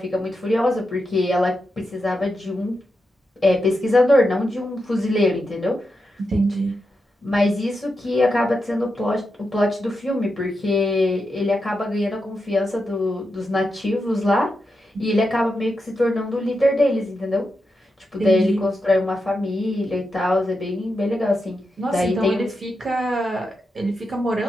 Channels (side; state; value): both; normal; correlation 0.87